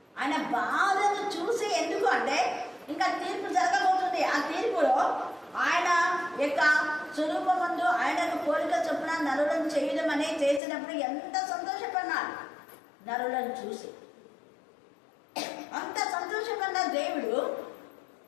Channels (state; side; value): drops out; right; at 10.6 s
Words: ఆయన బాధను చూసి, ఎందుకు అంటే ఇంకా తీర్పు జరగబోతుంది. ఆ తీర్పులో ఆయన యొక్క స్వరూపమందు ఆయనకు పోలిక చొప్పున నరులను చేయడం అనేది చేసినప్పుడు ఎంత సంతోషపడినాడు. నరులను చూసి అంత సంతోషపడిన దేవుడు